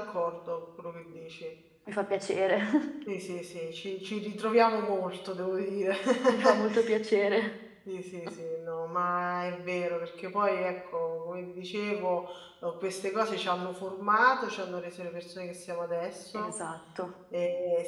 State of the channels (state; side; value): identical; both; correlation 1.00